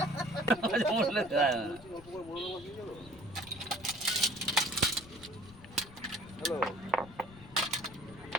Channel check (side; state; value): left; noise; rumble, 19 dB below the sound